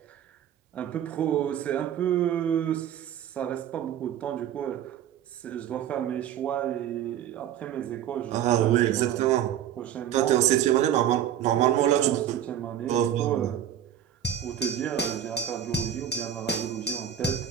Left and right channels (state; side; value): quieter; left; 10.2 dB